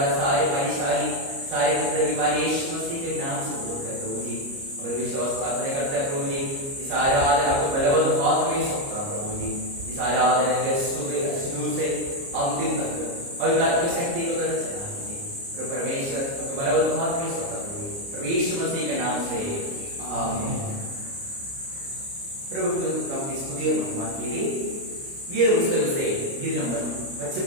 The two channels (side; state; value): left; late; 29 ms